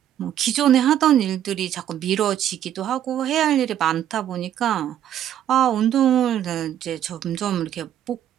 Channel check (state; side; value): quieter; left; 10.8 dB